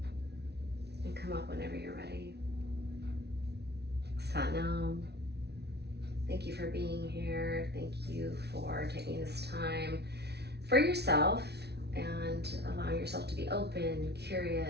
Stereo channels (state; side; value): late; left; 0.49 ms